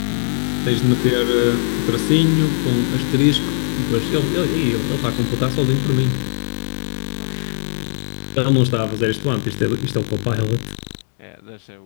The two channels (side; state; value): right; silent; digital silence